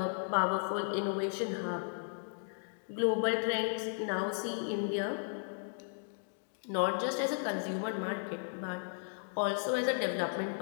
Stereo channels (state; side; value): silent; right; digital silence